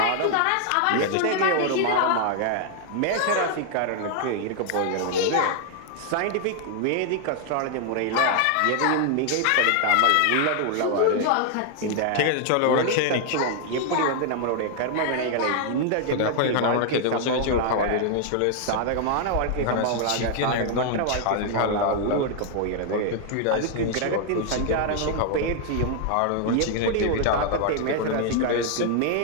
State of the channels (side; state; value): both; different; correlation 0.00